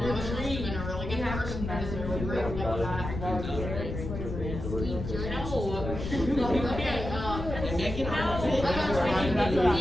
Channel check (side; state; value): left; noise; rumble, 6 dB below the sound